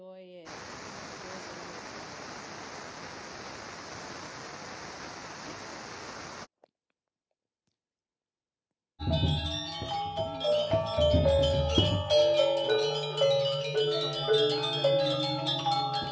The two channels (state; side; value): identical; both; correlation 1.00